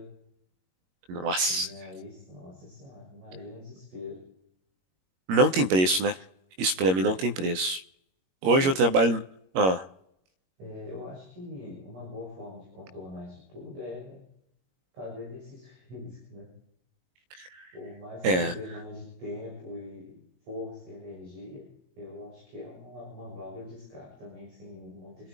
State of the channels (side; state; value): left; late; 22 ms